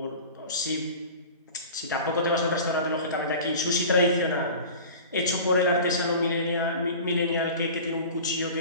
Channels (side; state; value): both; inverted; correlation -0.38